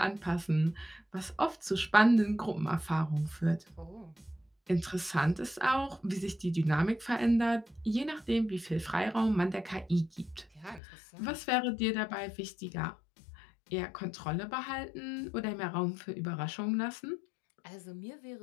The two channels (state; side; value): drops out; right; at 10.8 s